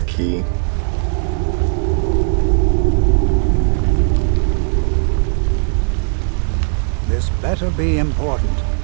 key. This better be important.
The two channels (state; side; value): silent; left; 62 dB below the other